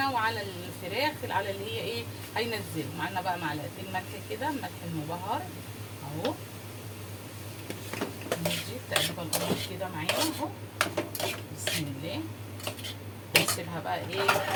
وعلى الفراخ على اللي هي ايه هينزل معانا بقى. معلقتين ملح كده، ملح المبهر اهو. نجيب تقريبا القمر كده معانا اهو بسم الله. نسيبها بقى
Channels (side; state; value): both; identical; correlation 1.00